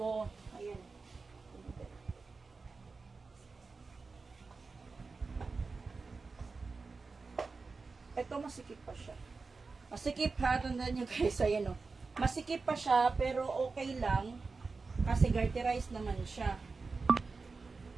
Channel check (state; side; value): quieter; left; 4.2 dB